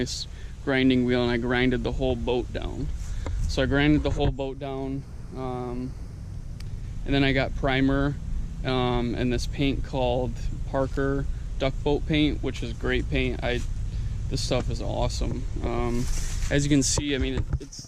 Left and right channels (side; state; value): both; identical; correlation 1.00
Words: grinding wheel, and I grinded the whole boat down. So I grinded the whole boat down, and then I got primer and this paint called Parker Duck Boat Paint, which is great paint. This stuff is awesome. As you can see, I mean,